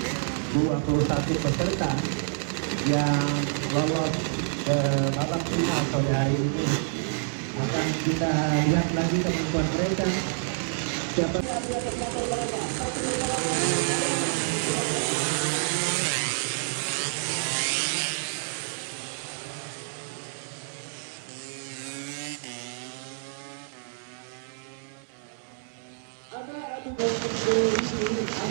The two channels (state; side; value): silent; left; 59 dB below the other